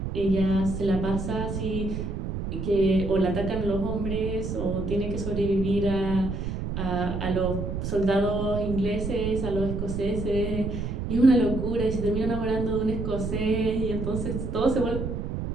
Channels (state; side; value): noise; right; rumble, 4 dB below the sound